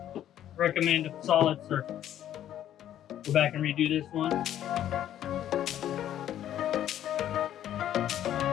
recommend a solid surface. Go back and redo this one.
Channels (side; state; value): right; quieter; 11.4 dB